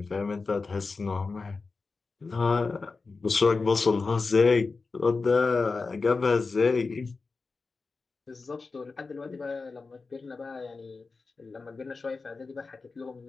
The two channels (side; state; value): right; quieter; 4.2 dB